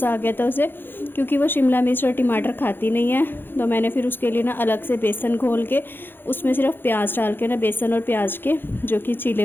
आ गया था उसे, क्योंकि वो शिमला मिर्च और टमाटर खाती नहीं है। तो मैंने फिर उसके लिए ना अलग से बेसन घोल के उसमें सिर्फ प्याज डाल के ना बेसन और प्याज के जो कि चीले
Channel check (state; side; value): late; right; 0.10 ms